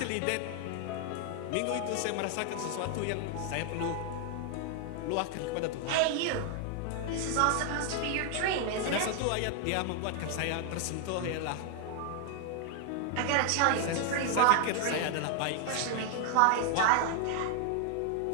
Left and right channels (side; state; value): both; different; correlation 0.00